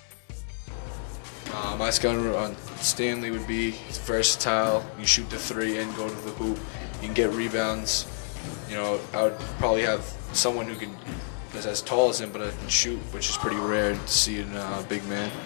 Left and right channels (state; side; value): silent; right; 59 dB below the other